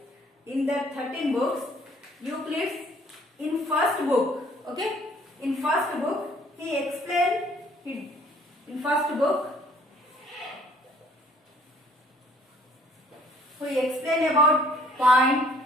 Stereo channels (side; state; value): both; normal; correlation 0.59